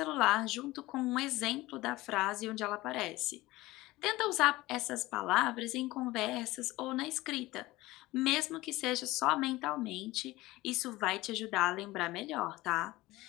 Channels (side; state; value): right; quieter; 19.0 dB